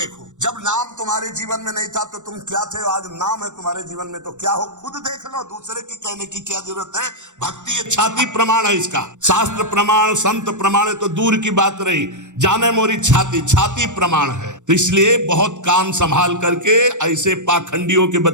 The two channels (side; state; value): left; late; 0.85 ms